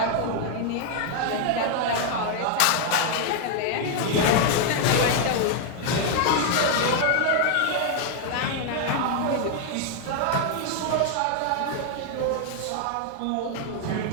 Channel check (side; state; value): both; different; correlation 0.00